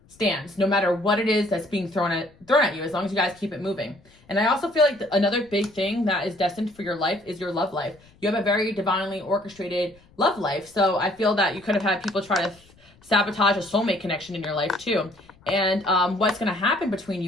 stands, no matter what it is that's being thrown at you, as long as you guys keep it moving. And I also feel like another big thing that is destined for your life is your love life. You have a very divinely orchestrated love life. So I feel that you could have had people try to sabotage a soulmate connection in your life too. And what's going to happen between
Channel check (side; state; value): left; noise; rumble, 29 dB below the sound